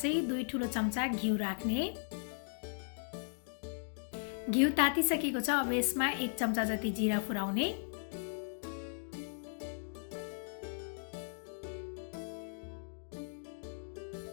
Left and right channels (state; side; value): silent; right; digital silence